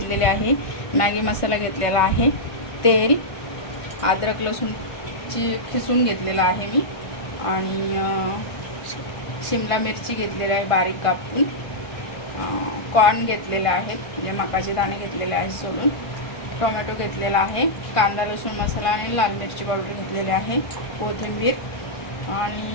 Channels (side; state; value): right; late; 1.5 ms